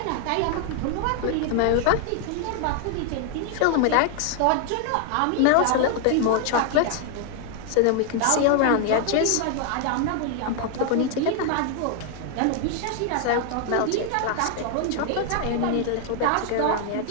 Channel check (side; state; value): both; different; correlation 0.00